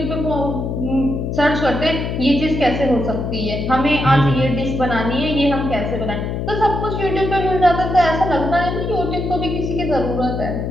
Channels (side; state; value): left; noise; hum, 3 dB below the sound